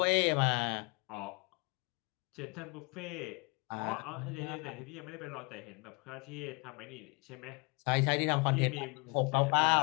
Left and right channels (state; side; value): quieter; right; 30.1 dB